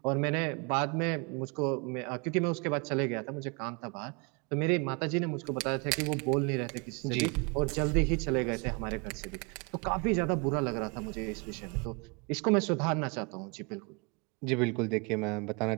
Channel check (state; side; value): quieter; left; 31.9 dB